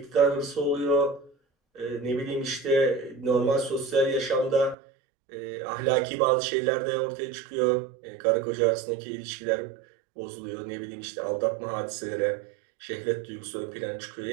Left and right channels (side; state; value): left; drops out; at 4.8 s